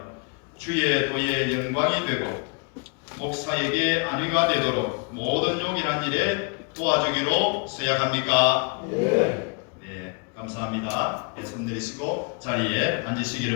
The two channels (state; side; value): quieter; right; 34.0 dB